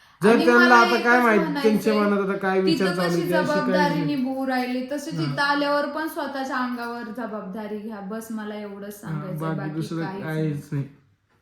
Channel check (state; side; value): identical; both; correlation 1.00